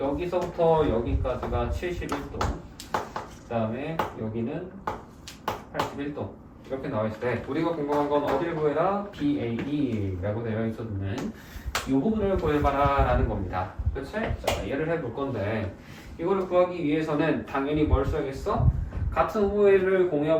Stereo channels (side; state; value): both; identical; correlation 1.00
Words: 여기서부터 여기까지가 71도 그 다음에 여기는 81도 이렇게 나와있을 때 우리가 궁금한 건 어디를 구해라? BAB라고 되어 있었는 이 부분을 구해봐라 라는 겁니다. 그치? 자, 얘를 해볼 건데 이거를 구하기 위해서는 당연히 뭘 써야겠어? 같은 호흡을